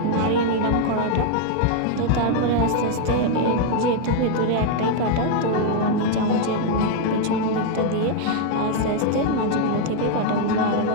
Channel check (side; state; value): both; different; correlation 0.00